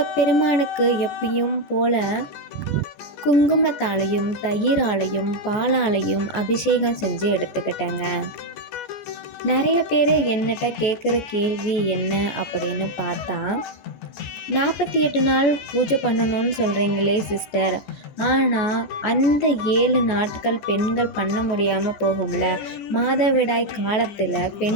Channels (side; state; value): right; late; 14 ms